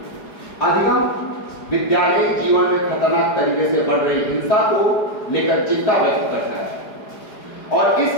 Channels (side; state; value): right; late; 4.9 ms